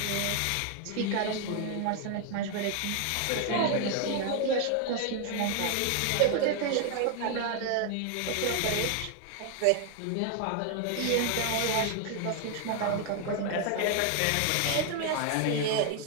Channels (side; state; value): both; different; correlation 0.00